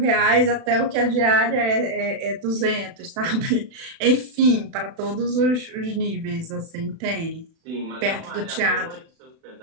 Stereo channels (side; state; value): left; late; 36 ms